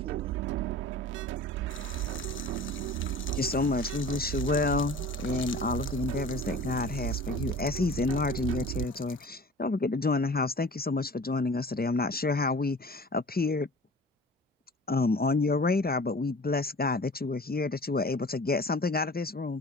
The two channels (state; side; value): normal; both; correlation 0.42